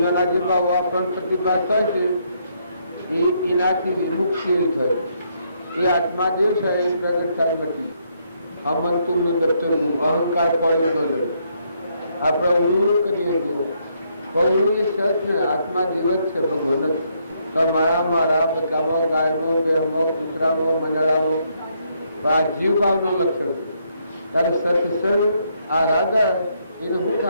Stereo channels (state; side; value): inverted; both; correlation -0.74